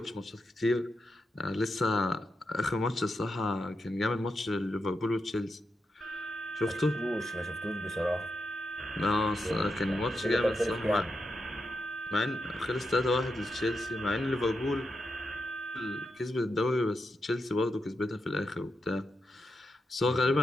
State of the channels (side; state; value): both; normal; correlation 0.86